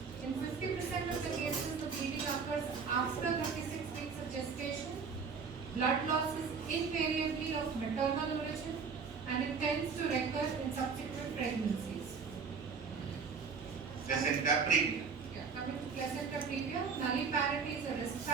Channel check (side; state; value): left; quieter; 5.5 dB